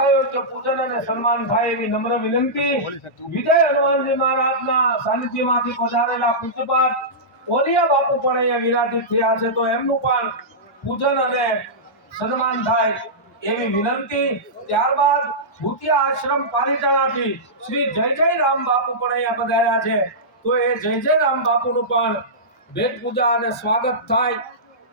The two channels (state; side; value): normal; both; correlation -0.15